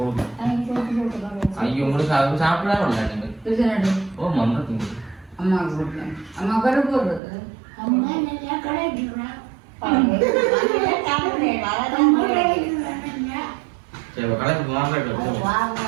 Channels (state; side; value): drops out; left; at 7.2 s